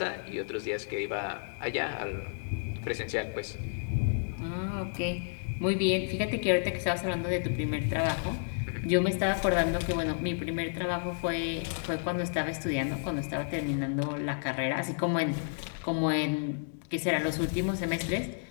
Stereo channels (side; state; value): right; silent; digital silence